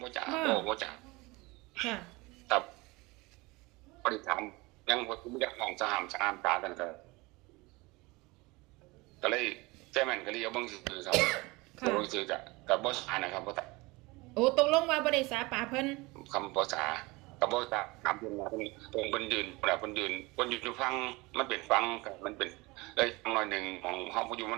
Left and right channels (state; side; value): quieter; left; 23.6 dB